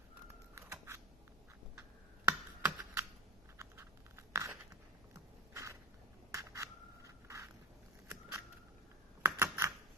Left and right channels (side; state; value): both; normal; correlation 0.33